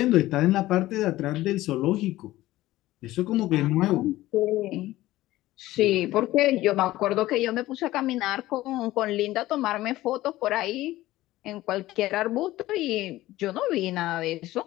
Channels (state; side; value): quieter; right; 16.4 dB